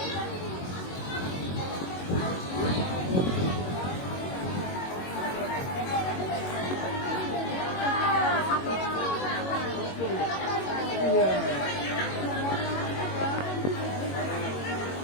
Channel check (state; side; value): late; right; 22 ms